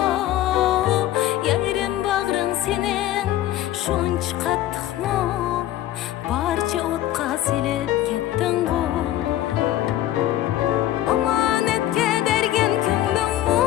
Yayrem bağrın senin şunç kattık mu? Barça otqa silip kettin mu? Amanetke bergen köňlüň mu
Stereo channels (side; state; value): right; quieter; 13.6 dB